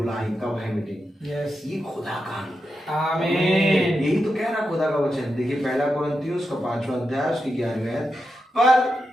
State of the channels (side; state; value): both; normal; correlation 0.87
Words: कब है मीटिंग। यस। ये खुदा का अनुग्रह है। आमीन। यही तो कह रहा खुदा का वचन। देखिए 1 कुरिन्थियों उसका 5वां अध्याय उसकी 11वीं आयत। पर